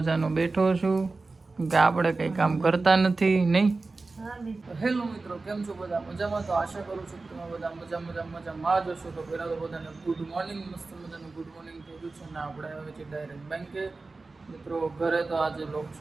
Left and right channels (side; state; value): left; quieter; 3.6 dB